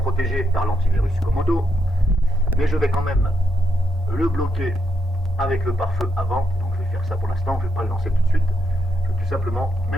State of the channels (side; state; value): both; normal; correlation 0.81